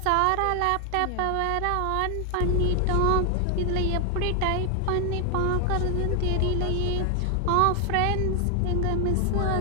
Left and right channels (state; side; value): different; both; correlation 0.00